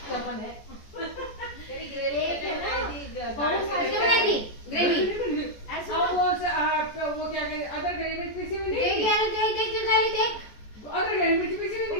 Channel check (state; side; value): late; right; 14 ms